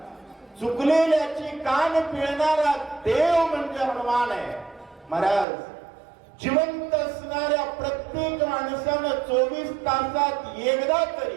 चुकलेल्याची कान पिळणारा देव म्हणजे हनुमान आहे. महाराज, जिवंत असणाऱ्या प्रत्येक माणसानं 24 तासात एकदा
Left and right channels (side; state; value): left; drops out; at 5.5 s